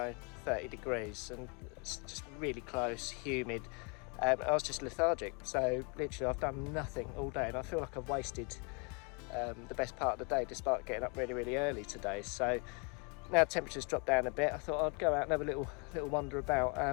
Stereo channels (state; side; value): quieter; right; 34.0 dB